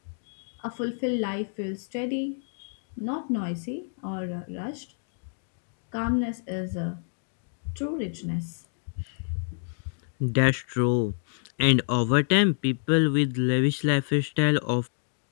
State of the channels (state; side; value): silent; right; digital silence